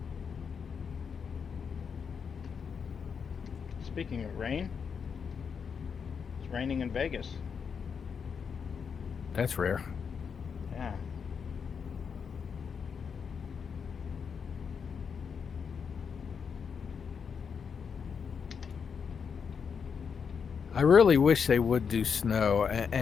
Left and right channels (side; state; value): right; quieter; 6.4 dB